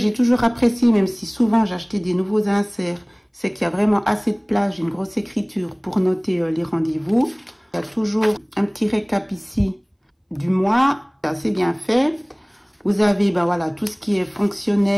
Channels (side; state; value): both; identical; correlation 1.00